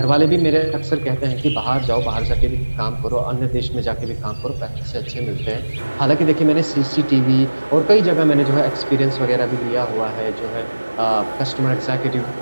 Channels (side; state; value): both; inverted; correlation -1.00